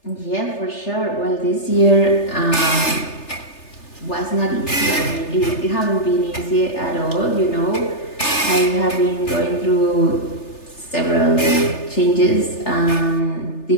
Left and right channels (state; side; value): late; right; 3.3 ms